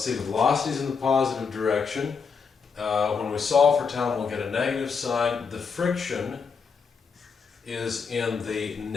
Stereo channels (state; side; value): quieter; right; 5.6 dB